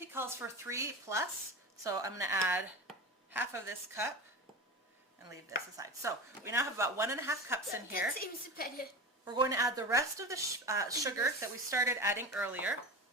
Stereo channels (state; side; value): normal; both; correlation 0.28